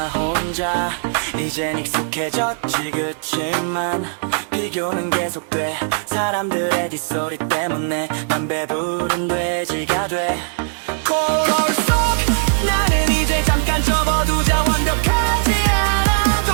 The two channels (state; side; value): silent; left; 61 dB below the other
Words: 혼자. 이젠 익숙해졌지. 그치만 비교는 계속돼. 사람들의 뒷소리 때문에 난 배부른 돼지가 돼. 거울 속 나는 이제 잠깐 접어두자. 완벽하지